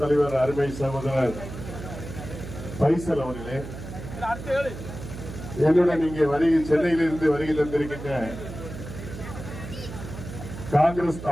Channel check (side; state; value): right; noise; hum, 10 dB below the sound